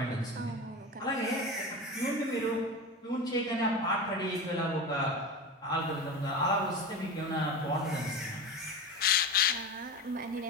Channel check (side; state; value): both; normal; correlation 0.26